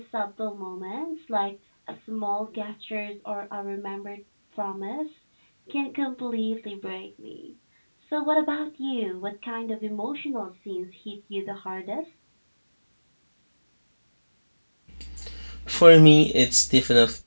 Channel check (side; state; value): both; inverted; correlation -1.00